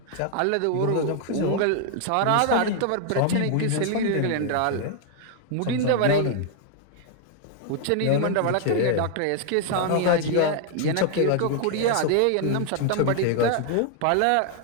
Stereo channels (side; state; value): both; different; correlation 0.00